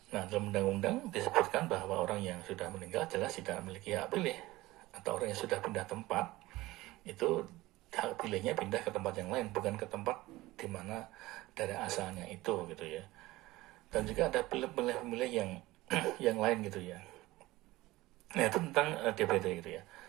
Nah, dalam undang-undang disebutkan bahwa orang yang sudah meninggal jelas tidak memiliki hak pilih, atau orang yang sudah pindah tempat itu hak pilihnya pindah ke tempat yang lain, bukan ke tempat di mana dari asalnya itu, gitu ya. Dan juga ada pemilih yang yang lain, gitu ya. Nah, itu tentang DPT, gitu ya.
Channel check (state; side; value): quieter; left; 18.7 dB